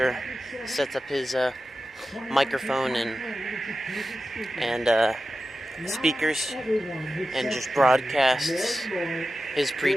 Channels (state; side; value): normal; both; correlation 0.93